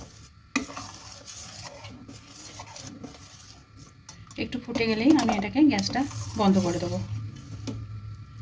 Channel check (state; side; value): identical; both; correlation 1.00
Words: একটু ফুটে গেলেই আমি এটাকে গ্যাসটা বন্ধ করে দেবো।